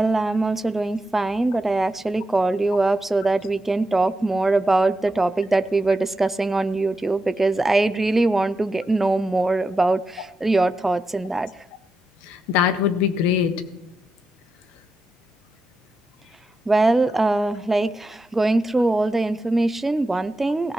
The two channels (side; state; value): both; normal; correlation 0.87